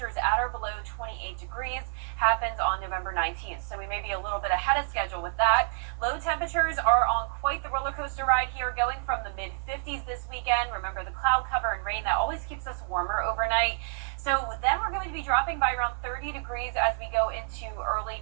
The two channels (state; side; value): silent; left; 55 dB below the other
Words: at or below 28 degrees, happens on November 19th. So we may be a little bit ahead of schedule with that. Low temperatures are on quite the roller coaster ride here, going from the mid-50s this weekend. Remember the cloud cover and rain, that always keeps us warmer overnight. So then we're going to be dropping by around 30 degrees as we go into early